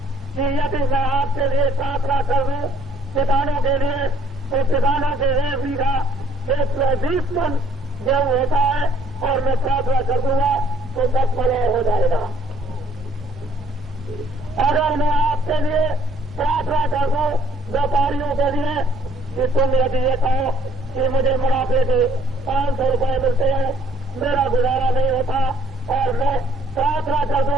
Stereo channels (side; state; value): both; normal; correlation 0.59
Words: कि यदि मैं आपके लिए प्रार्थना कर दूं किसानों के लिए, तो किसानों के 1 बीघा 120 मन गेहूं होता है, और मैं प्रार्थना कर दूंगा तो 10 मन हो जाएगा। अगर मैं आपके लिए प्रार्थना कर दूं व्यापारियों के लिए कि तुम यदि ये कहो कि मुझे मुनाफे के 500 रुपये मिलते हैं, मेरा गुजारा नहीं होता, और मैं प्रार्थना कर